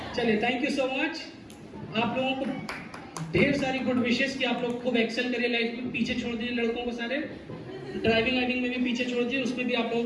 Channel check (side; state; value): both; identical; correlation 1.00